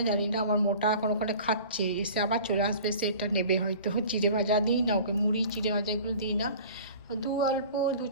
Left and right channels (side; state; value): both; inverted; correlation -0.43